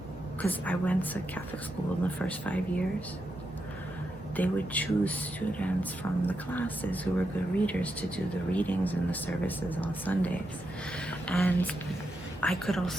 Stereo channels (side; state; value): both; normal; correlation 0.85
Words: because I went to Catholic school in the first 5 years. They would choose students from the classes who were good readers to do the readings and the services on Sundays. And I could